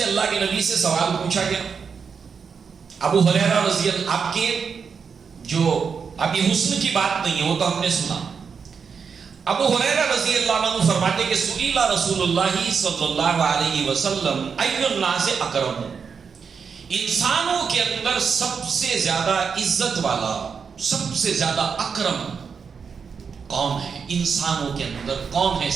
اللہ کے نبی سے سوال پوچھا گیا. ابو ہریرہ رضی اللہ، آپ کے جو ابھی حسن کی بات نہیں ہے وہ تو ہم نے سنا. ابو ہریرہ رضی اللہ عنہ فرماتے کہ سئل رسول اللہ صلی اللہ علیہ وسلم ای الناس اکرم، انسانوں کے اندر سب سے زیادہ عزت والا، سب سے زیادہ اکرم کون ہے؟ انسانوں کے اندر کون ہے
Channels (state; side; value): quieter; left; 6.0 dB